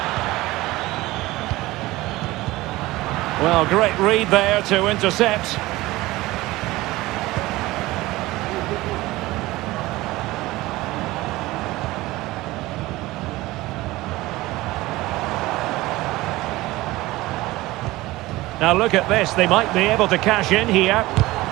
Well, great read there to intercept. Now look at this, they might be able to cash in here.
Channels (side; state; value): left; quieter; 18.8 dB